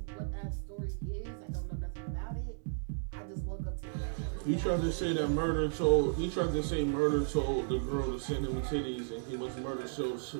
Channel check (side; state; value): left; silent; digital silence